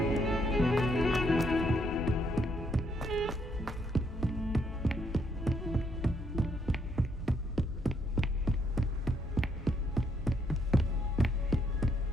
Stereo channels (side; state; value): both; normal; correlation 0.73